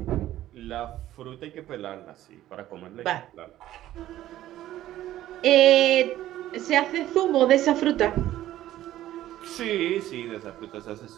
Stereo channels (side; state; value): left; quieter; 13.7 dB